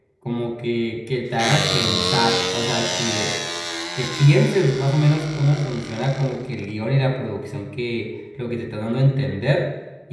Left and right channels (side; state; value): both; identical; correlation 1.00